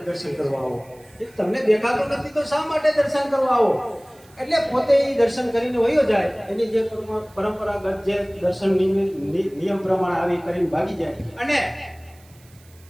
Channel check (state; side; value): noise; right; hiss, 28 dB below the sound